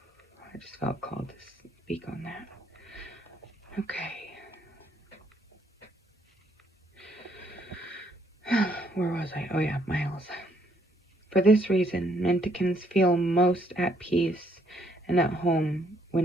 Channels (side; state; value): both; normal; correlation 0.69